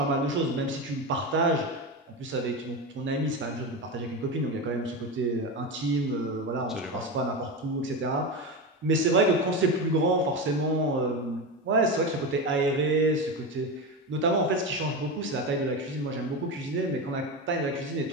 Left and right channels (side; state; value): both; normal; correlation 0.19